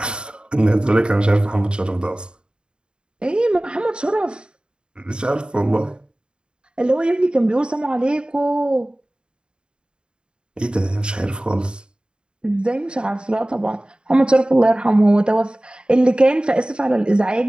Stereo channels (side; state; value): left; late; 0.051 ms